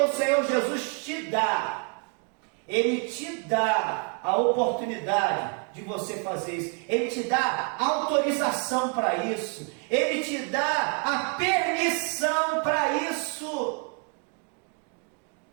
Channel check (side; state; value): left; quieter; 38.3 dB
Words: Senhor Jesus te dá. Ele te dá a oportunidade de você fazer isso. Ele te dá autorização para isso. Ele te dá a permissão para isso.